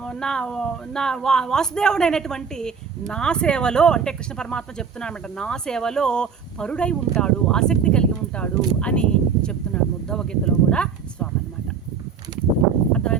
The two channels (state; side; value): quieter; left; 6.3 dB